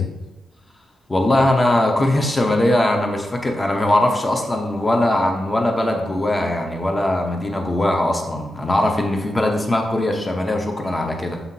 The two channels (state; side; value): normal; both; correlation 0.90